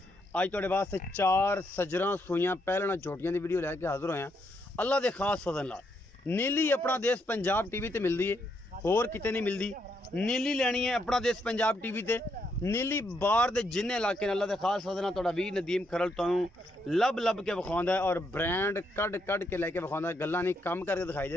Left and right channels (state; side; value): normal; both; correlation 0.77